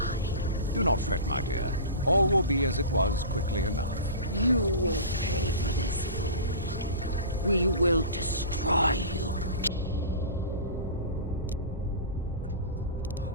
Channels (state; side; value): inverted; both; correlation -0.33